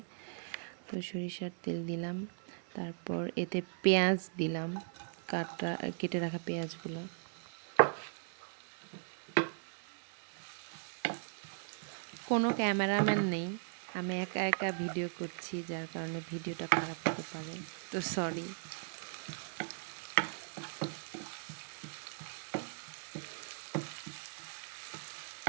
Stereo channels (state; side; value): silent; left; digital silence